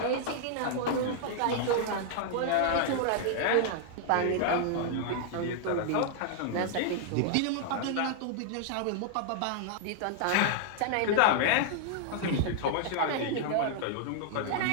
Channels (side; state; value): both; different; correlation -0.01